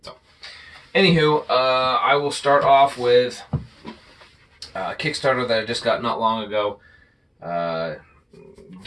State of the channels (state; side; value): identical; both; correlation 1.00